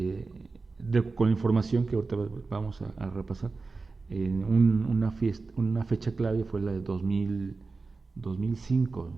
con la información que ahorita vamos a repasar, una fecha clave fue la de 2005 o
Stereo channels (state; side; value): quieter; left; 4.0 dB